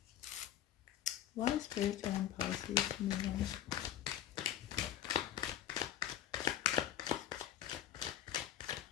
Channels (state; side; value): quieter; right; 11.2 dB